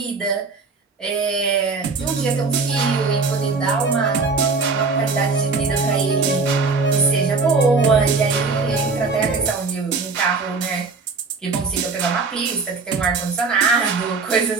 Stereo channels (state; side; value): quieter; left; 4.3 dB